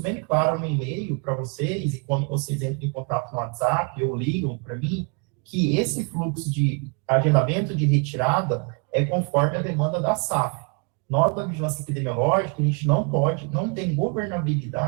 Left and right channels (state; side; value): quieter; left; 33.6 dB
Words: claro no e-mail para vocês, e quando vocês entram em contato no WhatsApp ou ligam para mim, que esse fluxo de agendamento de retirada é conforme a demanda da SAF. Nós, da Vigilância Epidemiológica, a gente não tem